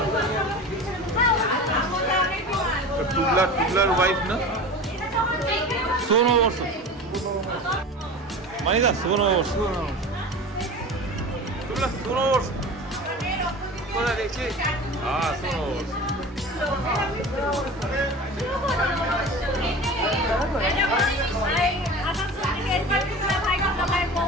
টুবলার ওয়াইফ না, শুভ নববর্ষ মানিদা, শুভ নববর্ষ, টুবলা শুভ নববর্ষ কোথায় দেখছি? হ্যাঁ শুভ নববর্ষ।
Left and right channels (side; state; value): both; normal; correlation 0.34